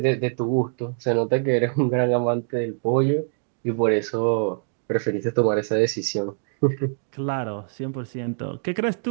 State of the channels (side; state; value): left; silent; digital silence